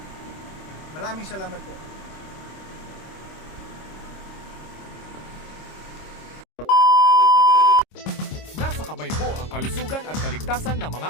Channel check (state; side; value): late; right; 26 ms